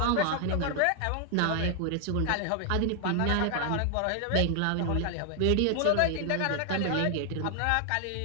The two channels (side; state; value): both; different; correlation 0.00